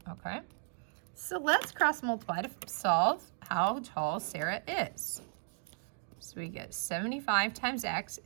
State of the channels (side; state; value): left; silent; 54 dB below the other